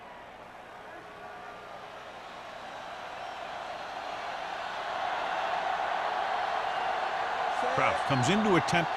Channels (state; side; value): identical; both; correlation 1.00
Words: Kraft comes in to attempt